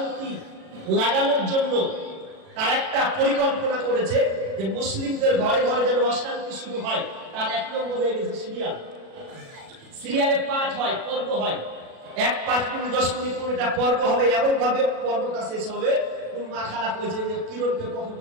লাগানোর জন্য তার একটা পরিকল্পনা করেছে যে মুসলিমদের ঘরে ঘরে যেন অশান্তি শুরু হয়, তার 1 নম্বর হয়ে গেছে সিরিয়াল। সিরিয়ালে পাঠ হয়, পর্ব হয়, 1 5 মিনিট 10 মিনিট করে একটা পর্ব হবে, এমন ভাবে পর্বটা শেষ হবে কোন মা খারাপ হয়েছে যে কিরণকে কখন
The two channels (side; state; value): left; late; 37 ms